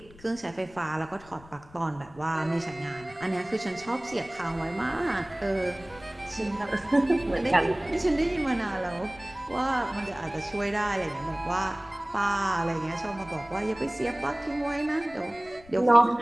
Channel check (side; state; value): left; noise; rumble, 22 dB below the sound